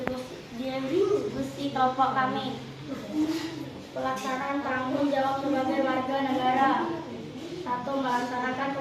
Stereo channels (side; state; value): both; identical; correlation 1.00